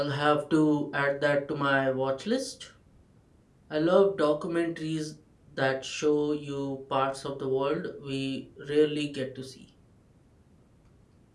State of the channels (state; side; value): identical; both; correlation 1.00